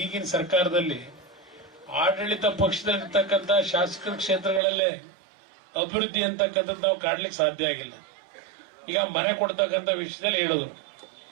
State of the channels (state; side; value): drops out; left; at 4.6 s